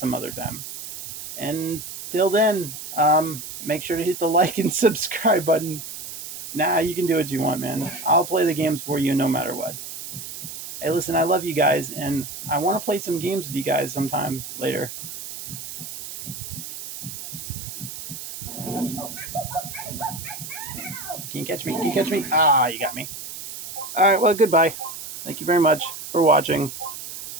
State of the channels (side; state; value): right; noise; hiss, 10 dB below the sound